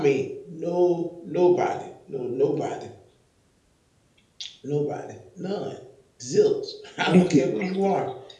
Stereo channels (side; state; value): both; identical; correlation 1.00